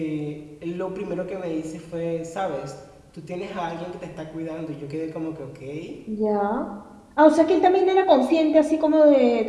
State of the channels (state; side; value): identical; both; correlation 1.00